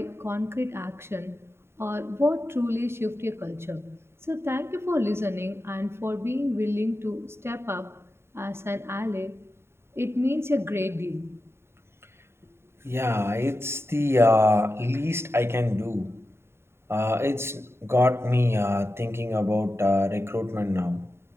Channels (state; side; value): late; left; 0.12 ms